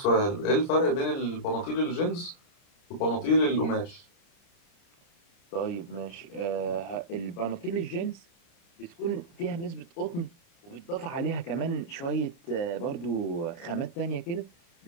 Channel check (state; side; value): late; right; 30 ms